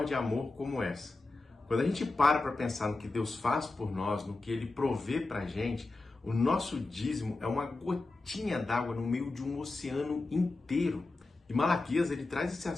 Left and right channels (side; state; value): right; quieter; 3.3 dB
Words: de amor como essa. Quando a gente para pensar no que Deus faz por nós, no que Ele provê pra gente, o nosso dízimo é uma gotinha d'água no meio de um oceano inteiro. E Malaquias, ele traz esse